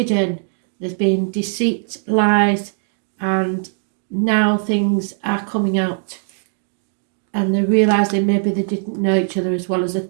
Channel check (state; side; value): silent; left; digital silence